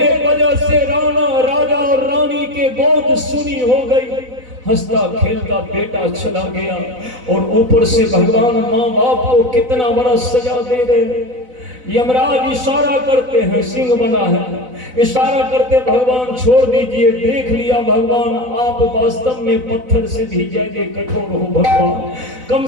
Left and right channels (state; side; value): late; left; 4.0 ms